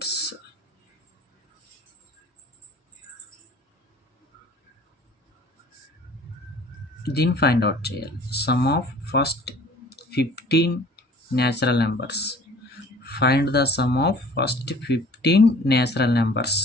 దీన్ని ఫైండ్ అవుట్ చేయాలి. Sum of first 15 natural numbers. Find the sum of first 15 natural numbers.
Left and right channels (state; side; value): normal; both; correlation 0.48